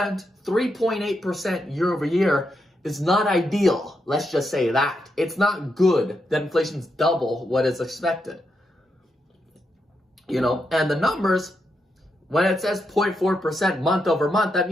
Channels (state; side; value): normal; both; correlation 0.83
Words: 3.8% year-over-year is not ideal. Let's just say that. It's not good that inflation's double what is expected. And the numbers, when it says 0.4% month over month, that